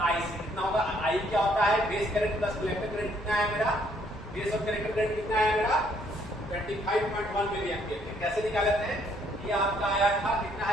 IC कितना होगा? I क्या होता है? Base current plus collector current कितना है मेरा? बेस और कलेक्टर करंट कितना है मेरा? 25.1 मिली एम्पियर। कैसे निकालते हैं? ये आपका आया था कितना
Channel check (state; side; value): normal; both; correlation 0.67